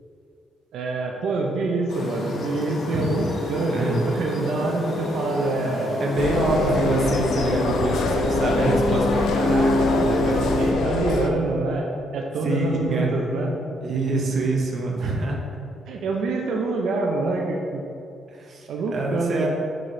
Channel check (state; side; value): normal; both; correlation 0.71